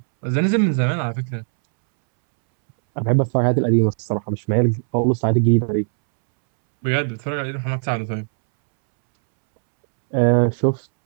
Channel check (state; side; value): silent; left; 65 dB below the other